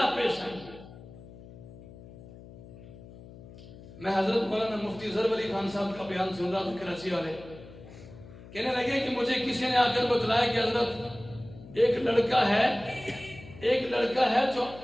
پیش آئیں گے۔ میں حضرت مولانا مفتی ظفر علی خان صاحب کا بیان سن رہا تھا، کراچی والے کہنے لگے کہ مجھے کسی نے آ کر بتلایا کہ حضرت ایک لڑکا ہے جو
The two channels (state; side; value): noise; left; hum, 17 dB below the sound